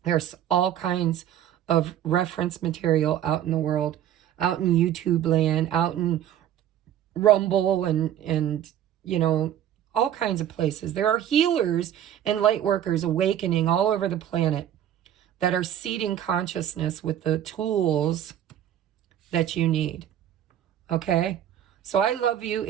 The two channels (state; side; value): quieter; left; 10.9 dB